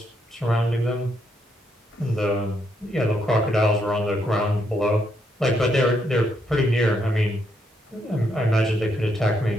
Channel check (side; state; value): both; normal; correlation 0.77